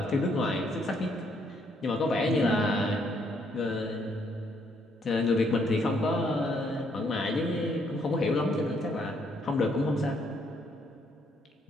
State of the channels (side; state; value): both; normal; correlation 0.71